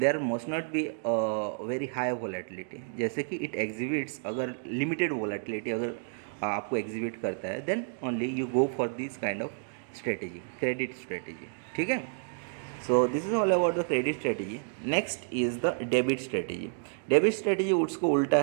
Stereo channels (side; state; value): left; silent; digital silence